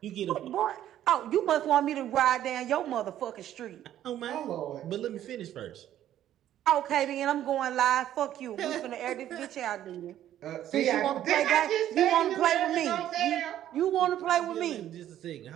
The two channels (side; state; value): left; quieter; 11.8 dB